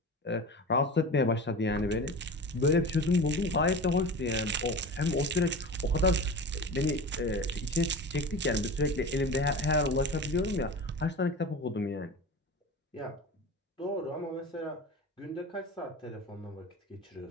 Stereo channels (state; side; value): normal; both; correlation 0.31